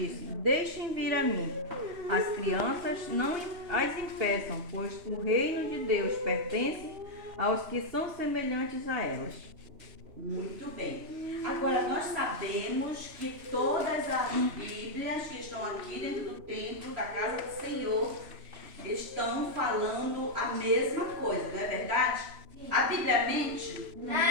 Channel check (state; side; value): late; left; 3.0 ms